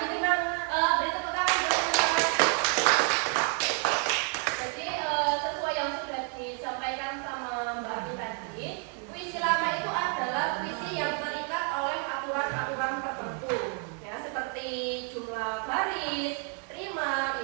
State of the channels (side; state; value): left; quieter; 39.9 dB